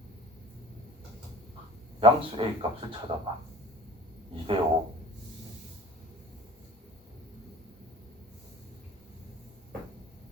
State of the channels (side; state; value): both; normal; correlation 0.42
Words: 양수 A 값을 찾아봐. 2대 5.